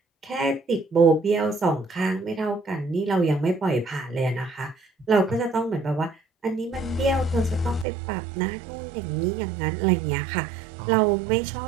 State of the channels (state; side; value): drops out; left; at 7.9 s